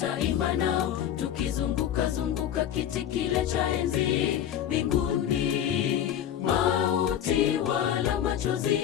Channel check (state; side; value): quieter; right; 10.2 dB